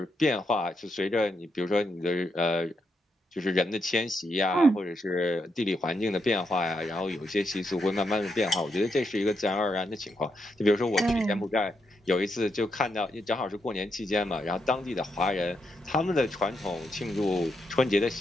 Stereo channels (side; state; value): both; normal; correlation 0.81